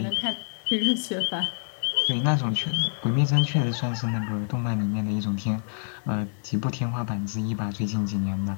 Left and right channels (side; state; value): right; silent; digital silence